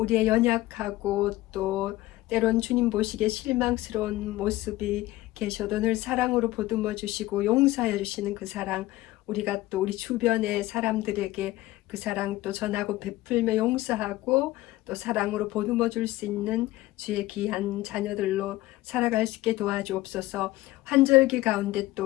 연약하고 또 때론 주님 보시기에 실망스러운 모습이 계셔도 늘 사랑으로 보듬어 주시고 용서해 주시는 그 사랑, 우리가 또 우리 주변의 사람들에게 그 사랑 또 전하고 베풀며 용서하고 또 사랑으로 보듬어 줄 수 있는 주의 귀한 자녀들로 살아갈 수 있게 도와주옵소서. 환절기 가운데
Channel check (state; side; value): quieter; right; 17.5 dB